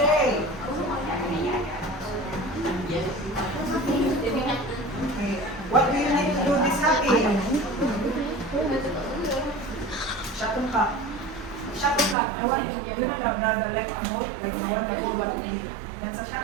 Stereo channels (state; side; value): drops out; left; at 12.2 s